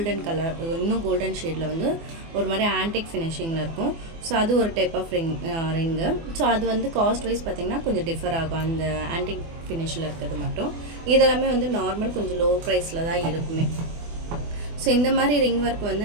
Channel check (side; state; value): left; late; 24 ms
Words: கலர், இன்னும் கோல்டன் ஷேடில் வந்து ஒரு மாதிரி ஆன்டிக் ஃபினிஷிங்கில் இருக்கும். ஸோ அது ஒரு டைப் ஆஃப் ரிங்கு. ஸோ அது வந்து காஸ்ட் வைஸ் பார்த்திங்கன்னா கொஞ்சம் டிஃபர் ஆகும், அந்த ஆன்டிக் ஃபினிஷில் இருக்கிறது மட்டும். இதெல்லாமே வந்து நார்மல் கொஞ்சம் லோ ப்ரைஸில் தான் இருக்குமே. ஸோ இந்த மாதிரி ரிங் ஒர்க்